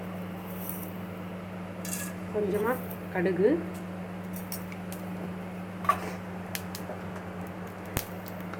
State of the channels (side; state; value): both; identical; correlation 1.00